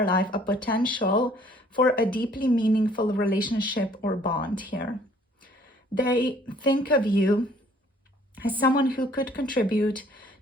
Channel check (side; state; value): both; normal; correlation 0.58